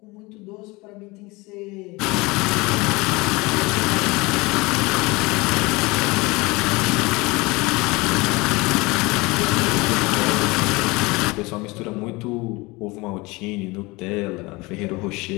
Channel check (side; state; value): right; quieter; 23.8 dB